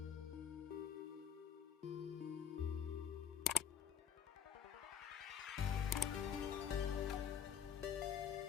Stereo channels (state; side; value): quieter; right; 8.1 dB